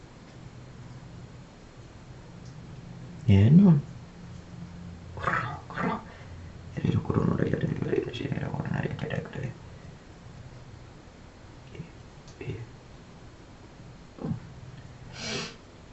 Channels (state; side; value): identical; both; correlation 1.00